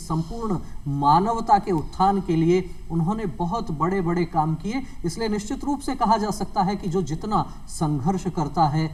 मानवता के उत्थान के लिए उन्होंने बहुत बड़े बड़े काम किए। इसलिए निश्चित रूप से कहा जा सकता है कि जो जितना संघर्ष करता है,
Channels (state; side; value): identical; both; correlation 1.00